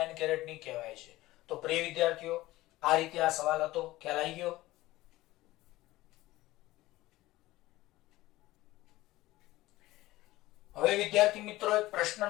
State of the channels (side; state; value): right; quieter; 17.7 dB